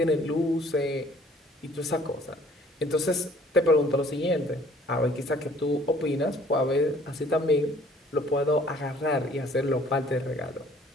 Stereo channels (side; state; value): both; normal; correlation 0.56